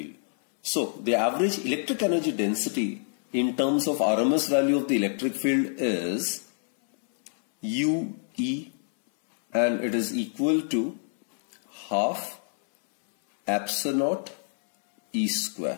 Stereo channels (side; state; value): right; silent; 60 dB below the other